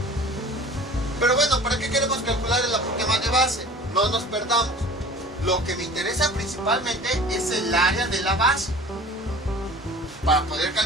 Pero bueno, ¿para qué queremos calcular el apotema de base? No nos perdamos. Lo que me interesa principalmente es el área de la base, para poder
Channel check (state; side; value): normal; both; correlation 0.43